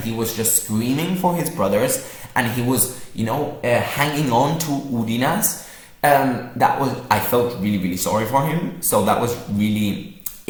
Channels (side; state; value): both; identical; correlation 1.00